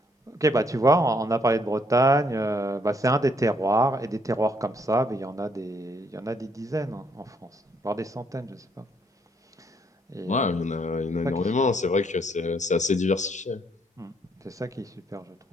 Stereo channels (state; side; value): normal; both; correlation 0.70